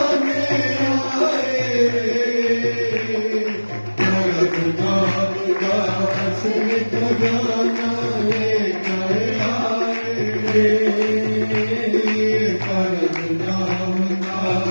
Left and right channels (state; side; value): inverted; both; correlation -1.00